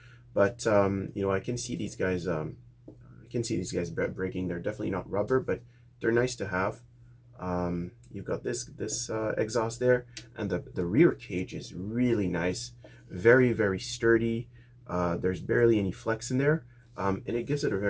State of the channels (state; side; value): identical; both; correlation 1.00